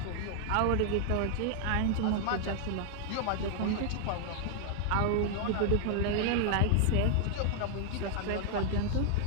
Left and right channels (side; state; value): both; different; correlation 0.00